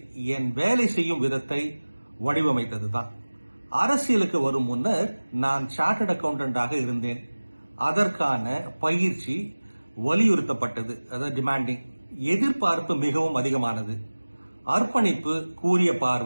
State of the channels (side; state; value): both; inverted; correlation -1.00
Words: என் வேலை செய்யும் விதத்தை வடிவமைத்ததுதான். அரசியலுக்கு வரும் முன்னர் நான் சார்ட்டர்ட் அக்கவுண்டன்டாக இருந்தேன். அதற்கான பயிற்சி வலியுறுத்தப்பட்டது, அதாவது டிமாண்டிங். எதிர்பார்ப்பு மிகவும் அதிகமானது. அர்ப்பணிப்பு, கூரிய